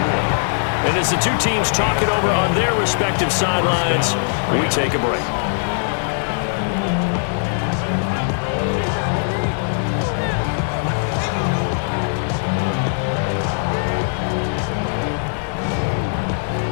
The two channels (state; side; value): silent; right; digital silence